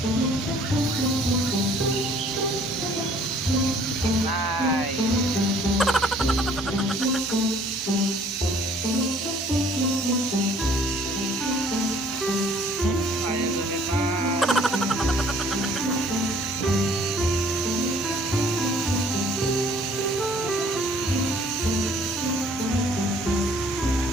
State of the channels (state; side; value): normal; both; correlation 0.57